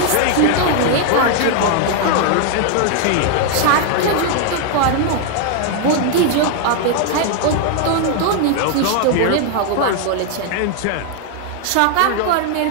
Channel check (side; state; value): both; different; correlation 0.00